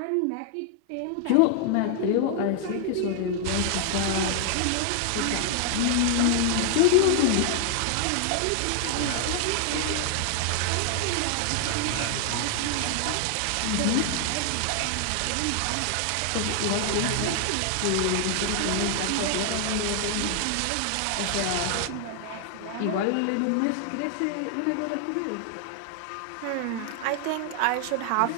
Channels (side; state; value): both; different; correlation 0.00